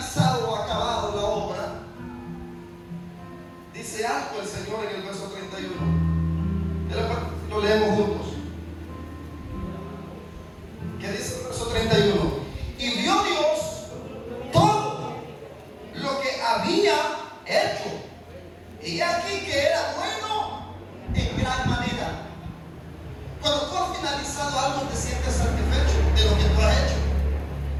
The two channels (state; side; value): identical; both; correlation 1.00